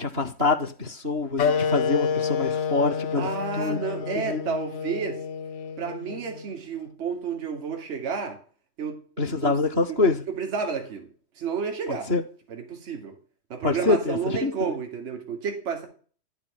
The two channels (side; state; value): left; late; 3.1 ms